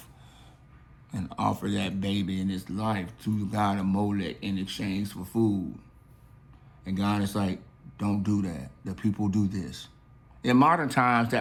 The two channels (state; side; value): identical; both; correlation 1.00